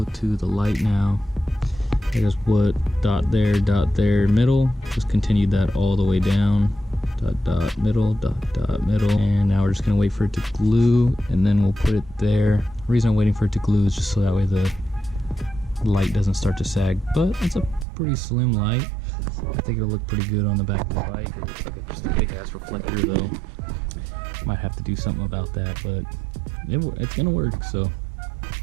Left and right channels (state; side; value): drops out; left; at 17.9 s